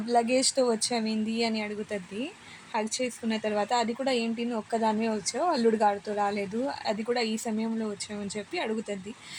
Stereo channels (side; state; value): both; identical; correlation 1.00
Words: లగేజ్తో వచ్చావింది అని అడుగుతుంది. హక్ చేసుకున్న తర్వాత అది కూడా ఏంటి నువ్వు ఒక్కదానివే వచ్చావు, అల్లుడు గాడితో రాలేదు, అది కూడా ఈ సమయంలో వచ్చావని చెప్పి అడుగుతుంది.